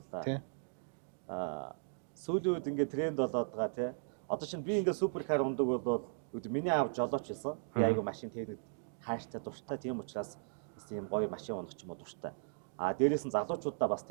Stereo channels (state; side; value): silent; left; digital silence